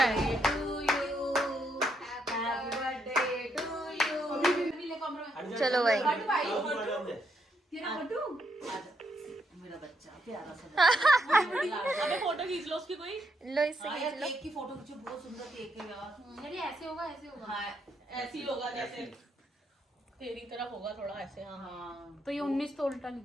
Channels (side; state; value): both; normal; correlation 0.77